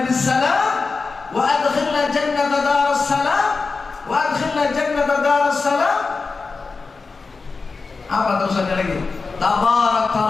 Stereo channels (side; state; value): right; quieter; 4.3 dB